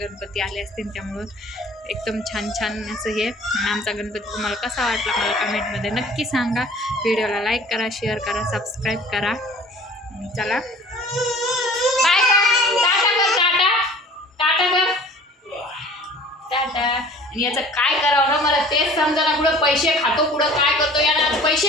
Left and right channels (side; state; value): both; normal; correlation 0.48